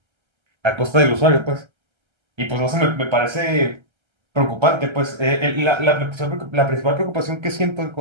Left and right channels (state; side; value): late; left; 1.3 ms